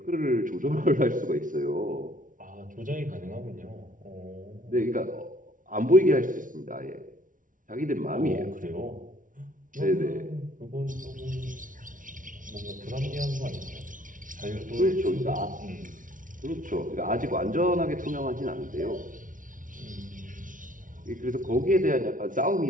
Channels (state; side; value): late; left; 0.38 ms